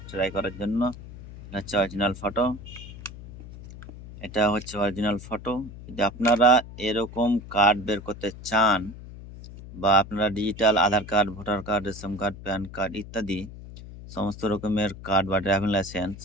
ট্রাই করার জন্য। এটা হচ্ছে অরিজিনাল ফটো। এটা হচ্ছে অরিজিনাল ফটো। যদি আপনারা এরকম কার্ড বের করতে চান বা আপনারা digital Aadhaar card, voter card, ration card, PAN card ইত্যাদি সমস্ত রকমের কার্ড বা ড্রাইভিং লাইসেন্স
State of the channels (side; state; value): left; noise; hum, 14 dB below the sound